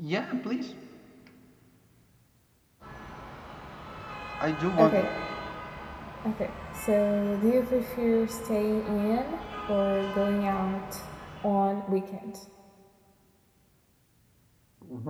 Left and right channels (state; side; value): identical; both; correlation 1.00